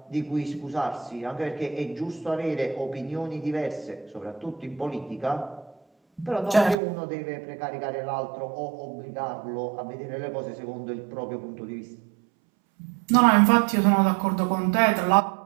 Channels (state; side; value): drops out; left; at 6.8 s